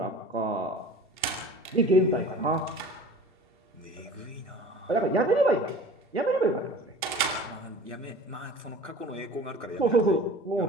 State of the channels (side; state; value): both; normal; correlation 0.41